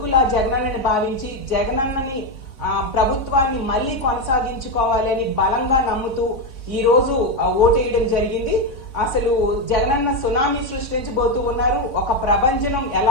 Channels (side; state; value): right; late; 3.6 ms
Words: జగనన్నని భావించి జగనన్నని ప్రభుత్వాన్ని మళ్ళీ కొనసాగించుకోవాలని బలంగా నమ్ముతూ ఈ రోజు ఓటేయడం జరిగింది. అసలు జగనన్న సునామీ సృష్టించబోతూ ఉన్నారు. ఒక ప్రభంజనం